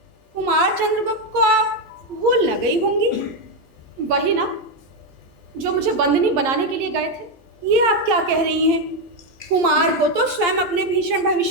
कुमार चंद्रगुप्त को आप भूल न गई होंगी। वही ना, जो मुझे बंदनी बनाने के लिए गए थे। ये आप क्या कह रही हैं? कुमार को तो स्वयं अपने भीषण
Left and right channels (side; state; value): both; normal; correlation 0.06